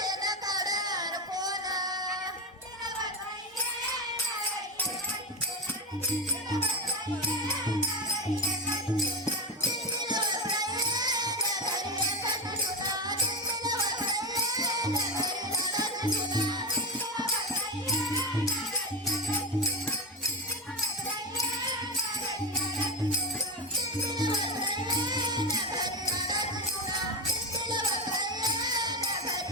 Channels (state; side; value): normal; both; correlation 0.16